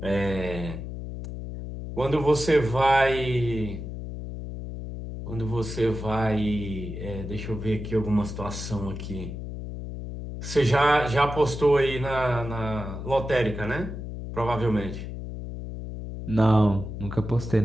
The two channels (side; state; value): left; noise; hum, 8 dB below the sound